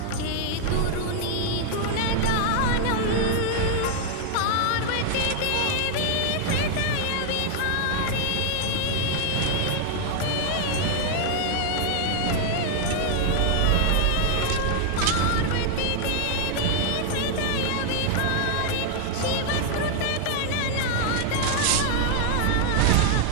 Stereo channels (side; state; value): both; different; correlation 0.00